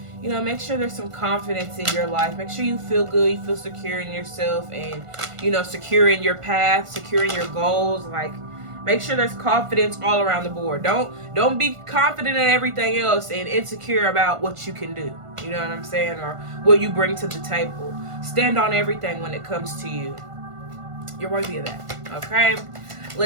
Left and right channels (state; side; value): late; left; 1.5 ms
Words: you know, make sure there's some confidence in your life. Make sure you feel good, you feel secure in yourself, and, you know, secure in your path, secure in your goals. Like, make sure there's confidence all around the board. Don't be confident in everything else and insecure about what you can do. You know what I'm saying? Or what you bring to the table. Stand on everything when it comes to you. You're worthy of that. Okay?